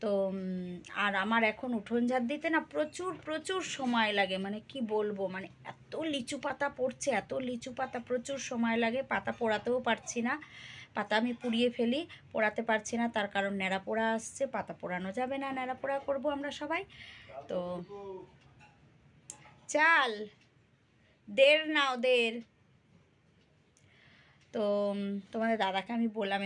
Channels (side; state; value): both; identical; correlation 1.00